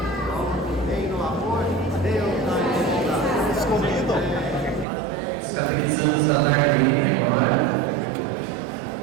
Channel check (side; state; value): left; drops out; at 4.9 s